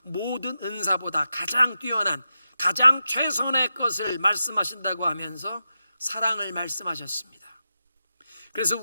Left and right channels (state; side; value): inverted; both; correlation -0.89